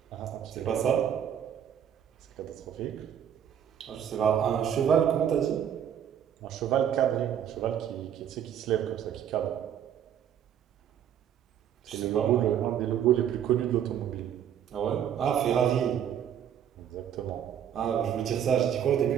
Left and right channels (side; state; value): left; quieter; 9.4 dB